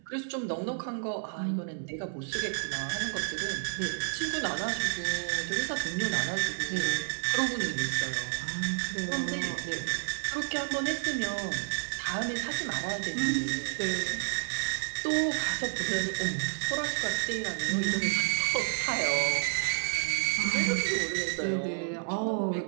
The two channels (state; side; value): silent; left; 57 dB below the other